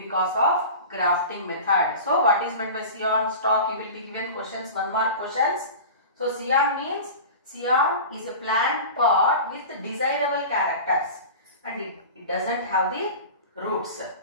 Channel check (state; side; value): inverted; both; correlation -0.34